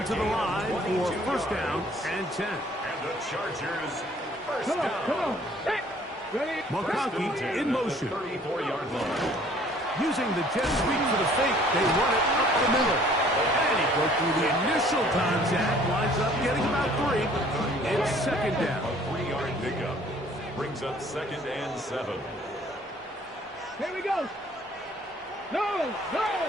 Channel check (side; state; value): both; normal; correlation 0.56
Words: to the line for first down and 10. And the Chargers first Come down. on. Hey, ready? McConkey in motion. 34-yard line. Using the jet sweep for the fake, they run it up the middle. And he broke through the initial contact, winds up getting about 3. It's second down. A 3-yard pickup. Brings up second and 7. Here we go. No.